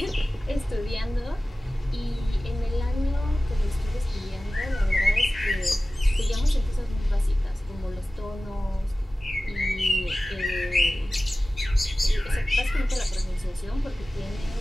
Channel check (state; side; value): normal; both; correlation 0.96